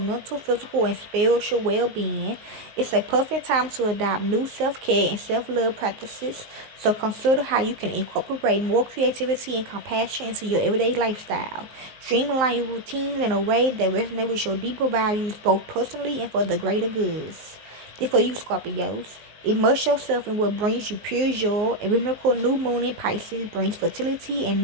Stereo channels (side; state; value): left; late; 19 ms